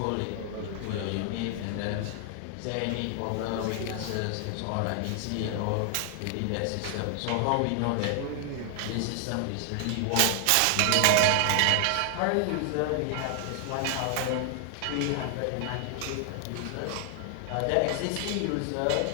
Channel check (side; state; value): both; different; correlation 0.00